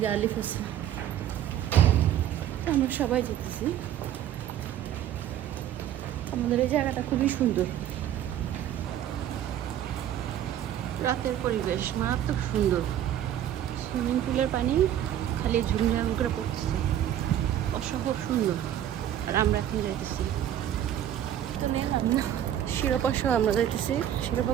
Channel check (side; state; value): left; quieter; 11.1 dB